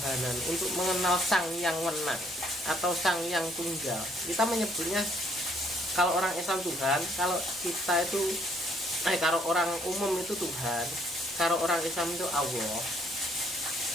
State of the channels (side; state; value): both; normal; correlation 0.66